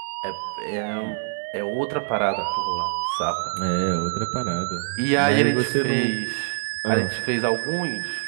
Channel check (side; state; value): left; silent; digital silence